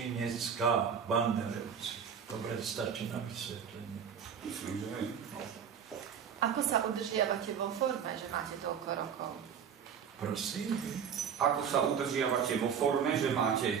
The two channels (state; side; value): quieter; left; 7.5 dB